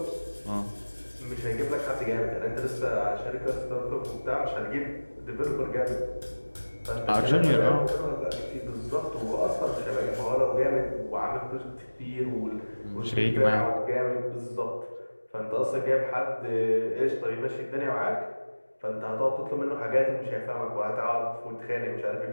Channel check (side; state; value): both; inverted; correlation -1.00